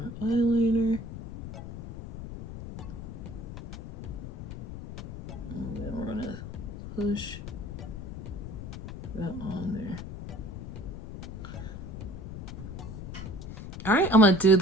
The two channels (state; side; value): noise; left; rumble, 9 dB below the sound